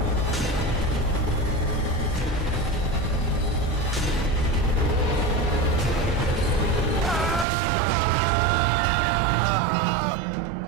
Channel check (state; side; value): drops out; left; at 7.5 s